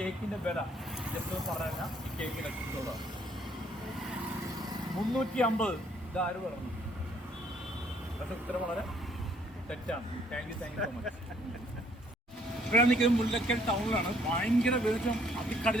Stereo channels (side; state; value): both; normal; correlation 0.64